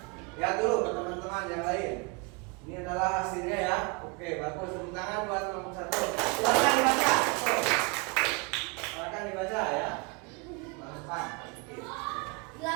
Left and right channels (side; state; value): left; quieter; 30.4 dB